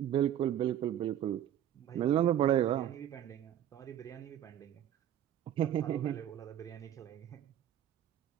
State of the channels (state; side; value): quieter; left; 11.0 dB